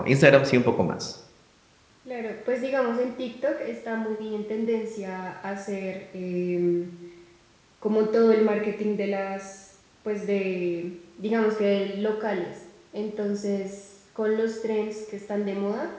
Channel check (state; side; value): identical; both; correlation 1.00